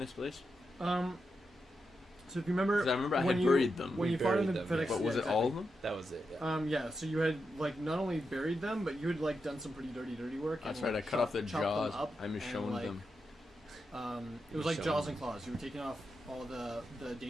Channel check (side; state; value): both; normal; correlation 0.87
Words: place? So if you remember, 'Cause I remember I when had you- buried them. when We you fought in the buried them, FedEx. But was yeah, it all of exactly. them? That was it. Yeah. Yeah, so you had not only buried them, but you had done some pretty dirty work. That's and, right. I cut off the chopped jaws. them up I'm and, showing them. It was like Showing jaws them. and claws. You were taking off all the